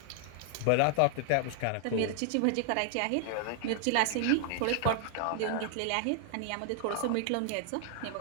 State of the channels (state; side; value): different; both; correlation 0.00